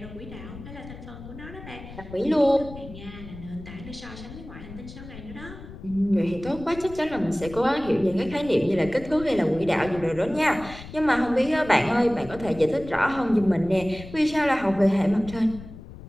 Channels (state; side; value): noise; left; rumble, 14 dB below the sound